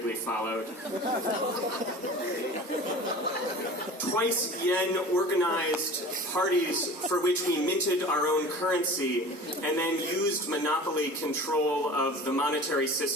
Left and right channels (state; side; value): normal; both; correlation 0.39